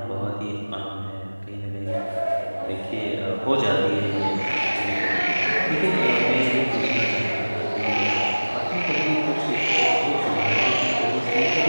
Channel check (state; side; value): inverted; both; correlation -1.00